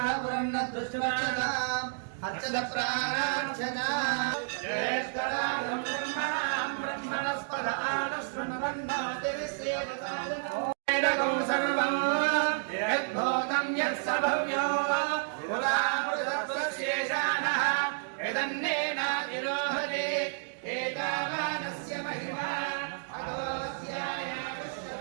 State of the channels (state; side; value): silent; left; digital silence